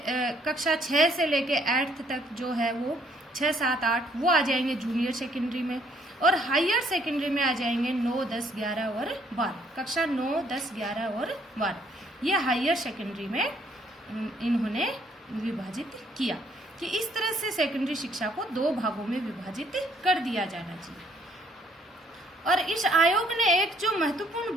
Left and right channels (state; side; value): normal; both; correlation 0.66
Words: कक्षा 6 से लेके 8th तक जो है वो 6, 7, 8 वो आ जाएंगे जूनियर सेकेंडरी में, और हायर सेकेंडरी में आ जाएंगे 9, 10, 11 और 12। कक्षा 9, 10, 11 और 12 ये हायर सेकेंडरी में इन्होंने विभाजित किया कि इस तरह से सेकेंडरी शिक्षा को 2 भागों में विभाजित कर दिया जाना चाहिए। और इस आयोग ने एक जो महत्वपूर्ण